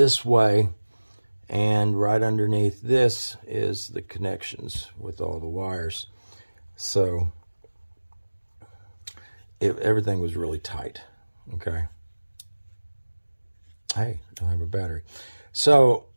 way, and right underneath this is the connections with all the wires. So everything was really tight, okay? Hey, don't have a battery. So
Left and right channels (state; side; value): inverted; both; correlation -1.00